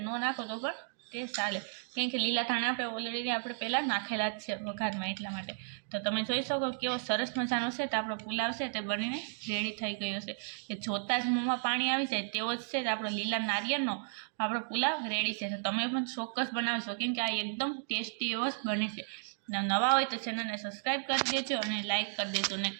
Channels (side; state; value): left; silent; digital silence